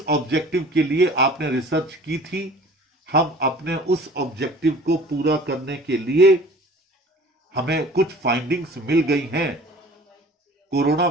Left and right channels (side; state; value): both; normal; correlation 0.46